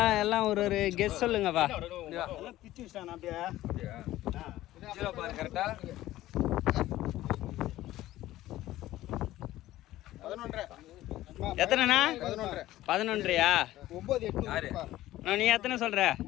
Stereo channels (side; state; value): right; quieter; 15.3 dB